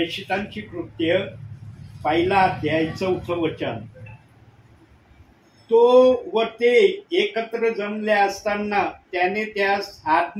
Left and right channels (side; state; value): both; identical; correlation 1.00